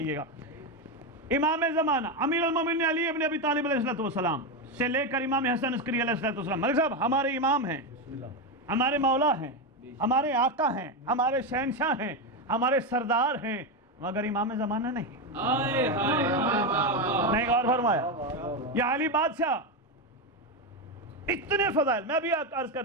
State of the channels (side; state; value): both; normal; correlation 0.10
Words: گا. امام زمانہ امیر المومنین علی ابن ابی طالب علیہ السلام سے لے کر امام حسن عسکری علیہ السلام. ملک صاحب ہمارے امام ہیں, ہمارے مولا ہیں, ہمارے آقا ہیں, ہمارے شہنشاہ ہیں, ہمارے سردار ہیں, مگر امام زمانہ نہیں. نہیں غور فرمایا؟ یا علی بادشاہ اتنے فضائل, میں بھی عرض کر